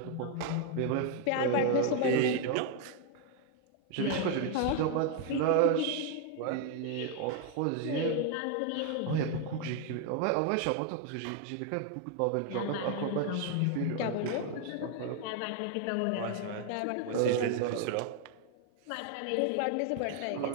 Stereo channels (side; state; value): both; different; correlation 0.00